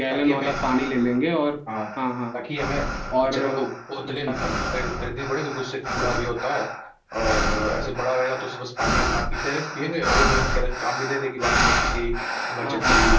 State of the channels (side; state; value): both; identical; correlation 1.00